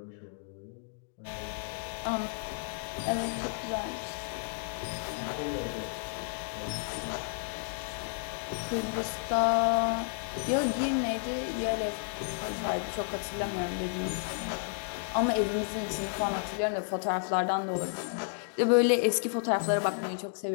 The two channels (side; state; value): right; silent; digital silence